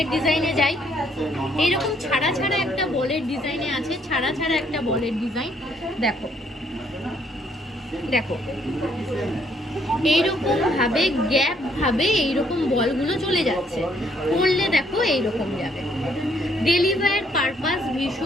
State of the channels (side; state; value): both; normal; correlation 0.68